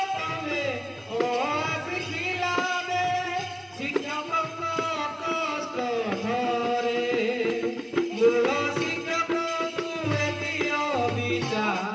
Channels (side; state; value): both; identical; correlation 1.00